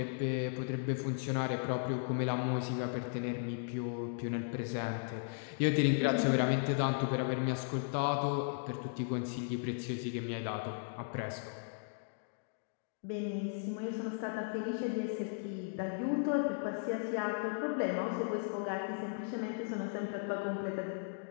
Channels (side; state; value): right; silent; digital silence